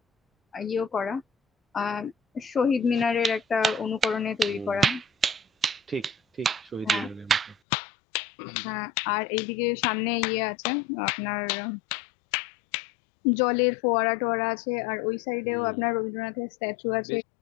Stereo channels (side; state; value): right; drops out; at 7.6 s